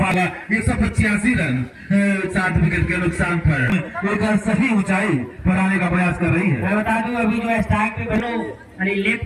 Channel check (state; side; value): identical; both; correlation 1.00